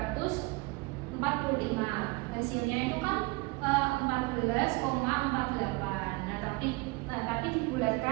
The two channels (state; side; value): quieter; left; 25.6 dB